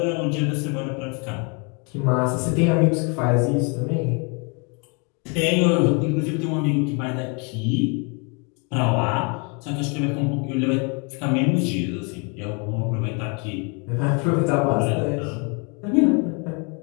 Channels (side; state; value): right; quieter; 34.3 dB